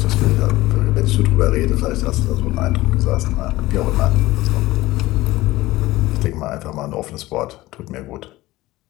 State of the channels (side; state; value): right; quieter; 18.1 dB